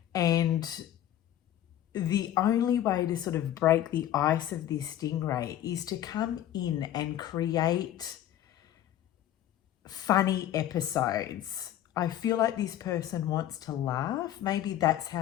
the only way to sort of break the ice of this stingray is to come in and create funny episodes. I feel like this person wants to laugh. Maybe that's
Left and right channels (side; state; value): right; quieter; 11.9 dB